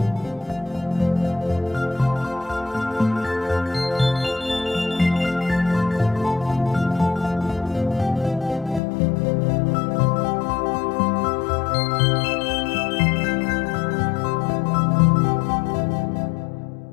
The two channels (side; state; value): right; drops out; at 8.8 s